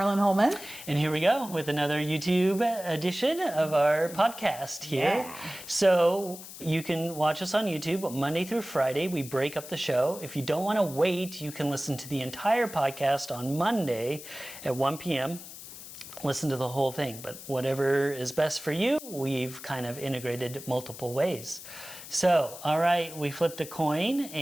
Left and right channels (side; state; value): left; noise; hiss, 14 dB below the sound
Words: And here we go with another YouTube edition of our podcast here. Yeah. So you can watch us on YouTube Monday through Friday. We break up the show. If you don't want to wait, you can listen to the entire podcast on Monday at 1 p.m. Listen to the whole thing, but whatever is best for you, we've kind of integrated multiple ways. So, all right, we flipped a coin